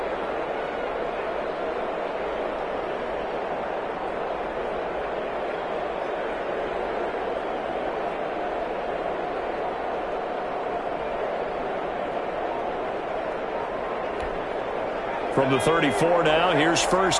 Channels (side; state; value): both; identical; correlation 1.00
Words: From the 34 now, here's